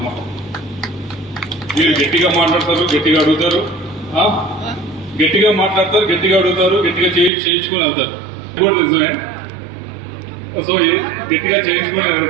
మీరు గట్టిగా మాట్లాడతారు, గట్టిగా అడుగుతారు, గట్టిగా మాట్లాడతారు, గట్టిగా అడుగుతారు, గట్టిగా చేయించుకొని వెళ్తారు. ఇది కూడా నిజమే. సో గట్టిగా చేయించుకొని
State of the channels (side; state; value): left; drops out; at 7.3 s